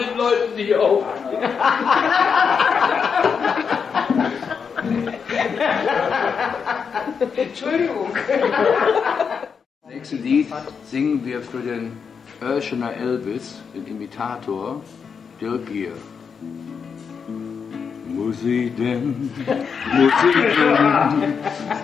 Leuten, die auch. Entschuldigung. Im nächsten Lied singen wir für den Oeschener Elvis, den Imitator, Dirk Gier. Muss ich denn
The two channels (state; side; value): quieter; right; 6.2 dB